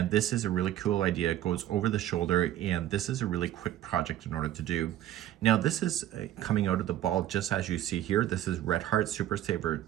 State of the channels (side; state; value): left; quieter; 12.8 dB